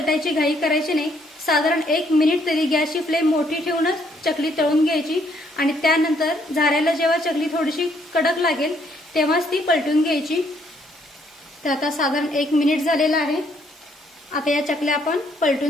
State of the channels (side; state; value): both; normal; correlation 0.69